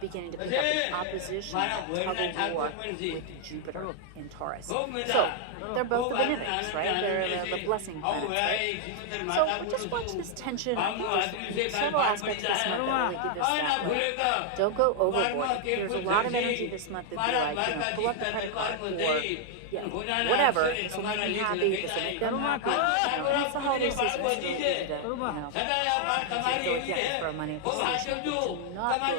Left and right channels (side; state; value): both; different; correlation 0.00